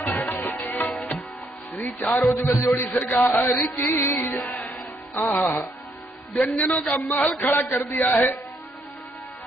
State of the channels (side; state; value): both; normal; correlation 0.72